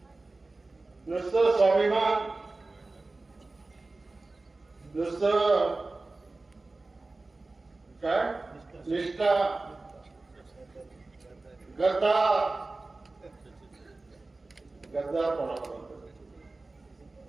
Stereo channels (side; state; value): left; quieter; 3.3 dB